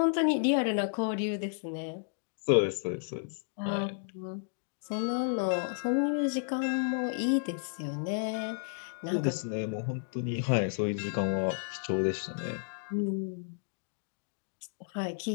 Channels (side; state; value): right; silent; digital silence